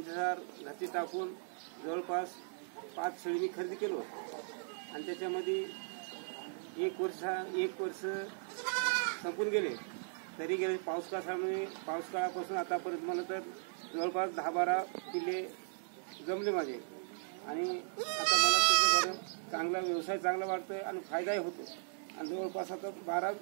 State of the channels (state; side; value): silent; left; digital silence